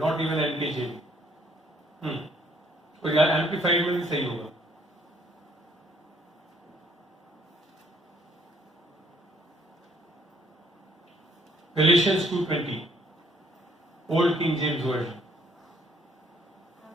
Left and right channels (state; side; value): normal; both; correlation 0.64